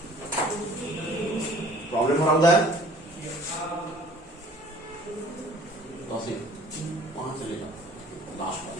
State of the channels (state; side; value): normal; both; correlation 0.51